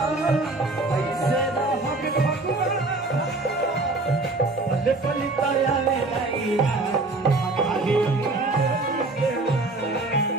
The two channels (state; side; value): quieter; left; 3.1 dB